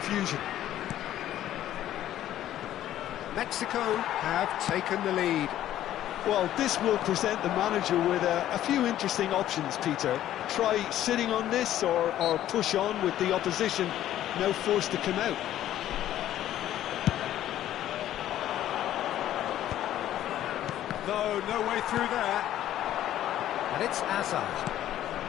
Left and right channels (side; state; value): right; quieter; 12.5 dB